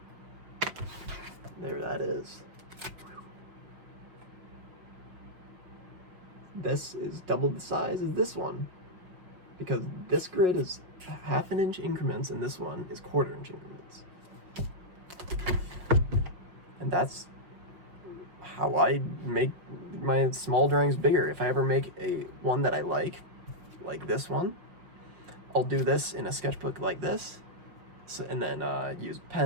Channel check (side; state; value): left; late; 5.5 ms